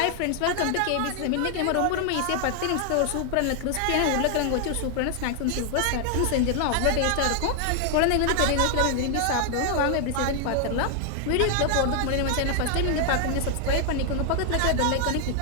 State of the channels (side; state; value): both; different; correlation 0.00